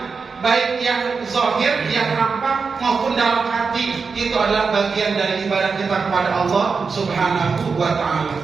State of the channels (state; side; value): quieter; left; 5.0 dB